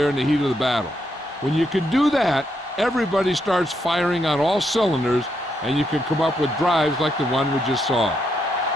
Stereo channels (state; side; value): normal; both; correlation 0.79